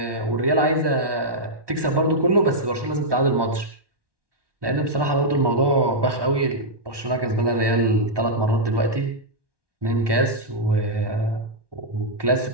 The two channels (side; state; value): left; late; 1.2 ms